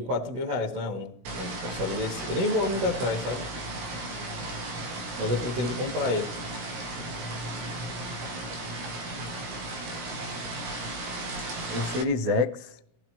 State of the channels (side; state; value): left; late; 17 ms